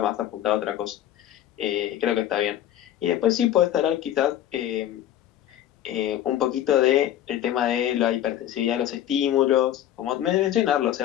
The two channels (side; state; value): right; quieter; 11.8 dB